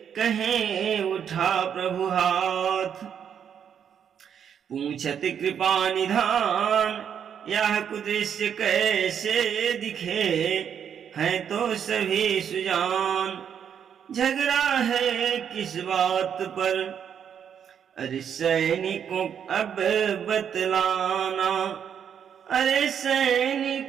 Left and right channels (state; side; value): quieter; left; 8.2 dB